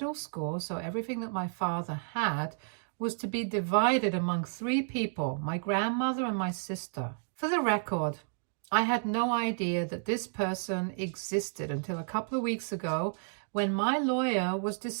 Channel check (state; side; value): silent; left; digital silence